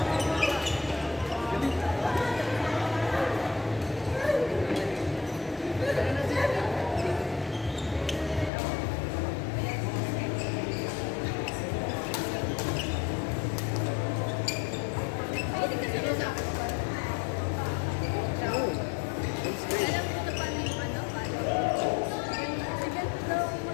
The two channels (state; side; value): drops out; right; at 8.5 s